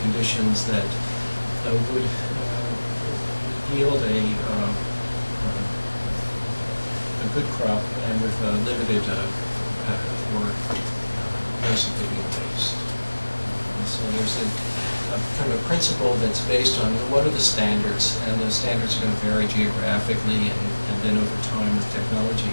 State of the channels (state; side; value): inverted; both; correlation -1.00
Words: that would yield a good crop and with limited or no significant waste. So there's a kind of a principle that's based on what are the standards, and the standards are going to vary geographically and then over time with